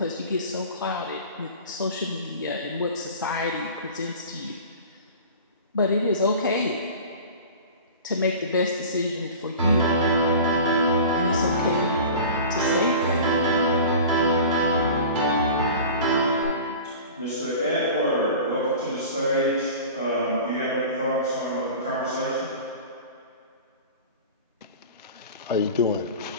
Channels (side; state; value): both; inverted; correlation -0.38